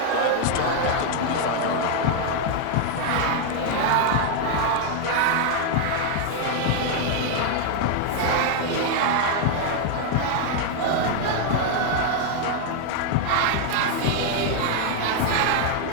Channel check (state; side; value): different; both; correlation 0.01